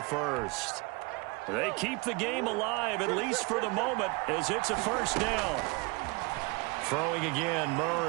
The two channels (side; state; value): left; quieter; 26.4 dB